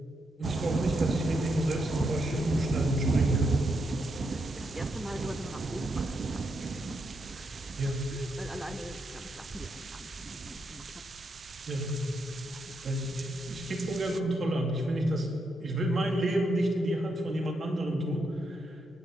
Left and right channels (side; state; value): both; normal; correlation 0.81